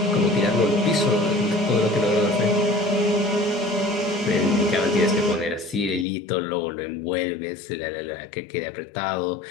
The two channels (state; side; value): drops out; right; at 6.1 s